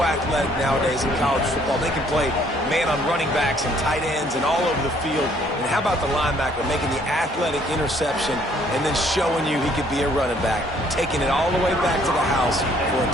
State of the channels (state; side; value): normal; both; correlation 0.63